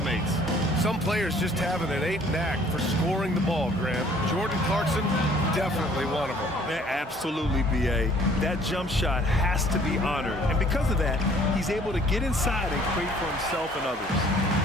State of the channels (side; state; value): both; normal; correlation 0.57